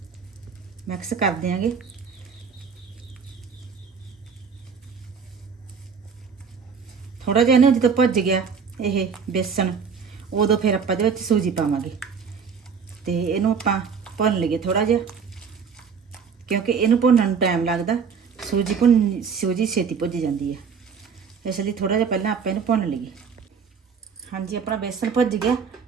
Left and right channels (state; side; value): quieter; left; 6.1 dB